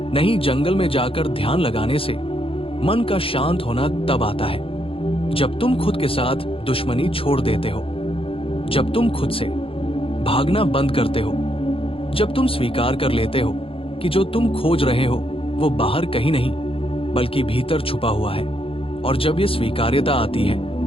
नहीं जंगल में जाकर ध्यान लगाने से। मन का शांत होना तब आता है जब तुम खुद के साथ दुश्मनी छोड़ देते हो, जब तुम खुद से भागना बंद करते हो, जब तुम स्वीकार कर लेते हो कि जो तुम खोज रहे हो वो बाहर कहीं नहीं बल्कि भीतर छुपा हुआ है। और जब ये स्वीकार्यता आती है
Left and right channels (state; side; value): late; right; 0.27 ms